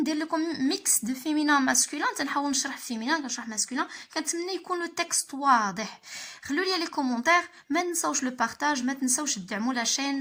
لكم ميكس دو فيمينا ماسكولين, تنحاول نشرح فيمينا كنشرح ماسكولين, كنتمنى يكون لو تكست واضح. خلوا لي لي كومونتير, ما تنساوش لو بارطاج, ما تنساوش تدعموا لا شين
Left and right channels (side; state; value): both; identical; correlation 1.00